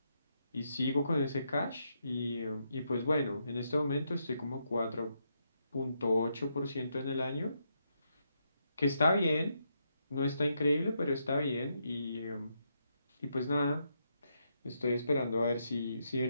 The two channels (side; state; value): both; inverted; correlation -0.80